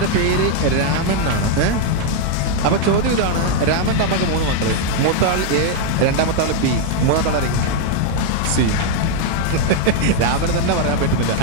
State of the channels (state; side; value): different; both; correlation 0.00